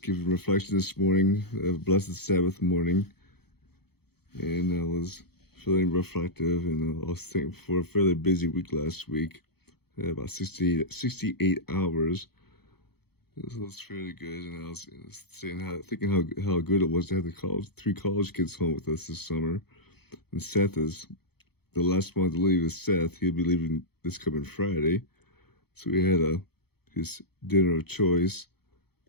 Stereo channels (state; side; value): late; right; 0.96 ms